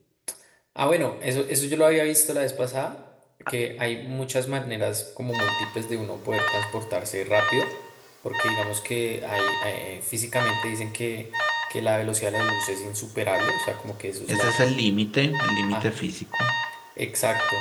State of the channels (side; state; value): both; identical; correlation 1.00